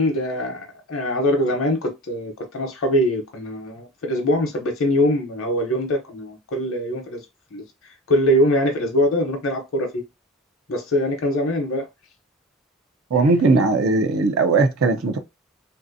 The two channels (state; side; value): normal; both; correlation 0.33